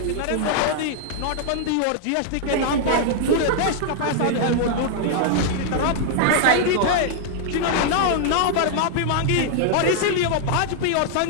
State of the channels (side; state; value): both; different; correlation -0.01